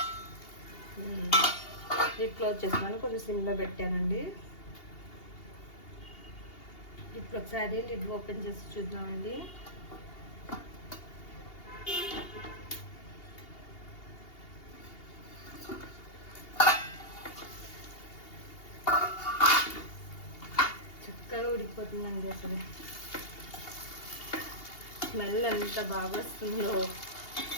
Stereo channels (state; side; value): late; right; 2.8 ms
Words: లిడ్ క్లోజ్ చేస్తున్నాను, కొంచెం సిమ్లో పెట్టానండి. ఇప్పుడు ఒకసారి లిడ్ ఓపెన్ చేసి చూద్దామండి. చక్కగా ఉడికిపోతుందండి. అసలు స్మెల్ ఎంత బాగా వస్తుందో.